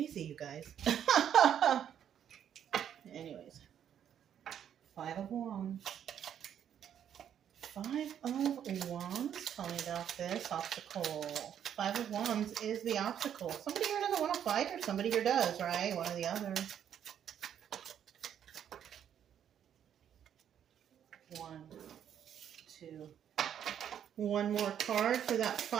you guys. Anyways. Five of Wands. Five of Wands. Tell me about this obstacle. Five of Wands is the obstacle. Somebody here doesn't want to fight, or somebody here does, right? One or the other. One, two. One more card for that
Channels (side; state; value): left; quieter; 9.3 dB